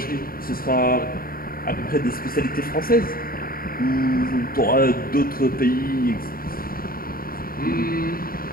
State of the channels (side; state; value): right; late; 0.43 ms